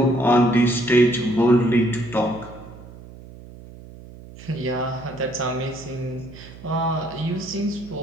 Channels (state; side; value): noise; right; hum, 17 dB below the sound